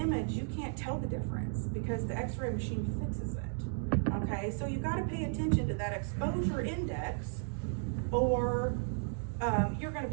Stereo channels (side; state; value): left; silent; digital silence